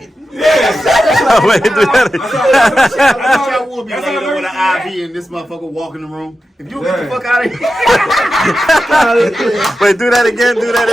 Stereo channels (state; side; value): normal; both; correlation 0.91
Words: Wait, do that. I wish I would be That's later how with nurses an IV and this motherfucker walk in the room. If you get the fuck out of here. Wait, do that again. Do that